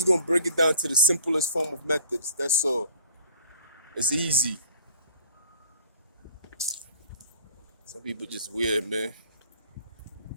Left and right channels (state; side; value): inverted; both; correlation -0.51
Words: gonna break it down to the simplest form of methods. That's all. It's easy. Some people just weird, man.